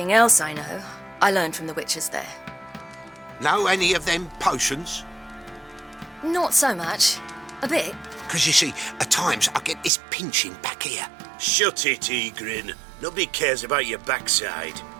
else I know, I learned from the witches there. Know any of them potions? Not so much. A bit. Because you see, at times I get this pinching back here. Shut it, Egrin. Nobody cares about your backside.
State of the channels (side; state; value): left; drops out; at 9.9 s